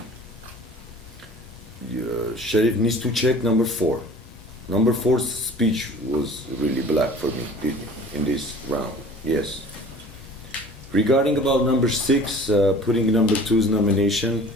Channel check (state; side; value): normal; both; correlation 0.45